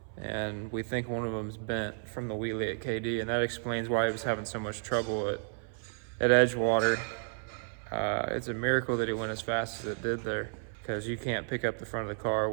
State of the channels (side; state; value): left; silent; 56 dB below the other